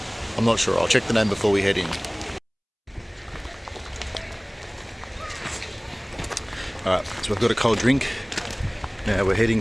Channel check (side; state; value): both; identical; correlation 1.00